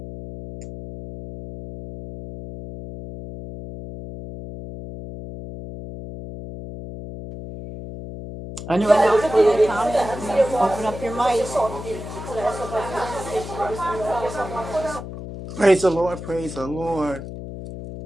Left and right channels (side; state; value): left; noise; hum, 10 dB below the sound